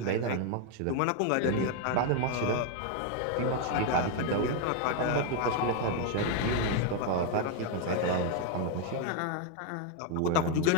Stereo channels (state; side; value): different; both; correlation 0.01